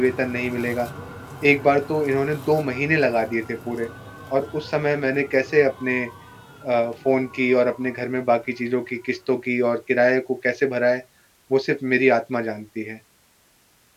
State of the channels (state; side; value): identical; both; correlation 1.00